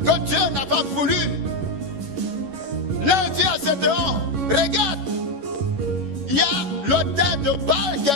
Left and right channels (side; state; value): left; late; 11 ms